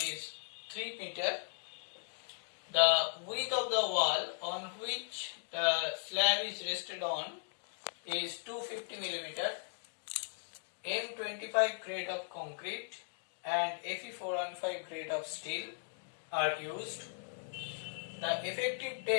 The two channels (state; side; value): silent; right; digital silence